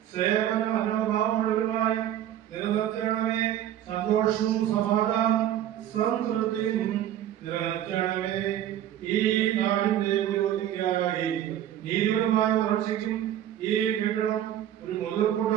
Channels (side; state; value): left; quieter; 11.5 dB